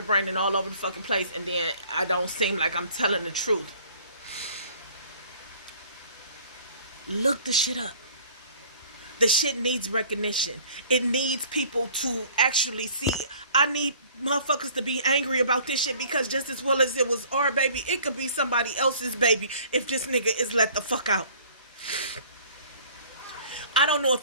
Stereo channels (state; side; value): inverted; both; correlation -0.52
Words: and all over the fucking place, and then I don't seem like I'm telling the truth. Look the shit up. The shit needs recognition. It needs people to actually see. I need motherfuckers to be angry about this shit, because just as well as it was our baby, it could be somebody else's baby if this nigga is let the fuck out. I don't know